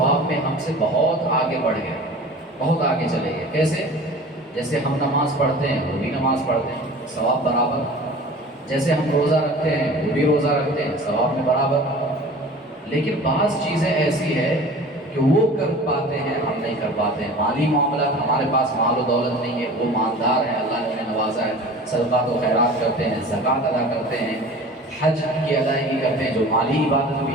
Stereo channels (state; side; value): normal; both; correlation 0.41